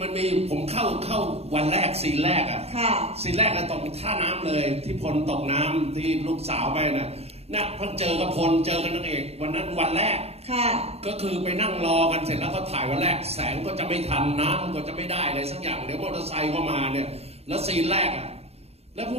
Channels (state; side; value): late; left; 0.30 ms